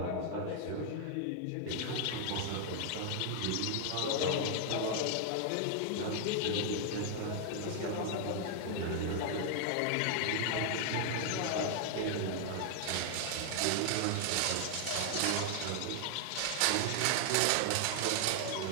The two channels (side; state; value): both; different; correlation 0.00